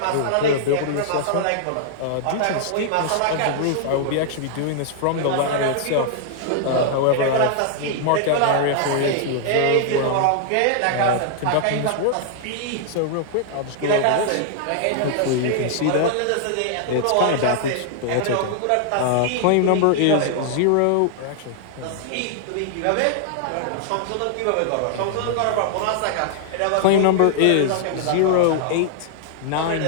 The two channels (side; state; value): both; different; correlation -0.01